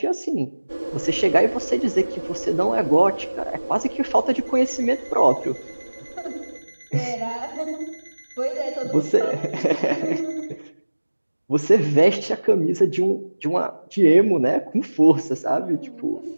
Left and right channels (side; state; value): both; inverted; correlation -1.00